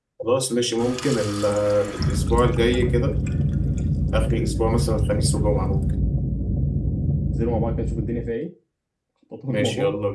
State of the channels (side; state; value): both; identical; correlation 1.00